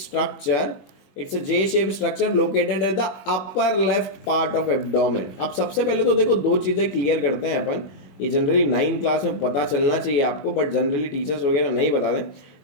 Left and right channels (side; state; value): right; late; 21 ms